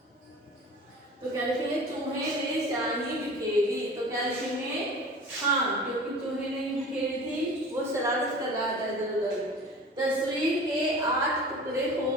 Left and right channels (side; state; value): both; normal; correlation 0.40